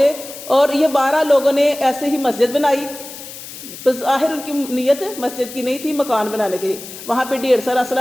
اور یہ 12 لوگوں نے ایسے ہی مسجد بنائی۔ بظاہر ان کی نیت مسجد کی نہیں تھی، مکان بنانے کی تھی۔ وہاں پہ ڈھیر سارا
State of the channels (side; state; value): left; noise; hiss, 13 dB below the sound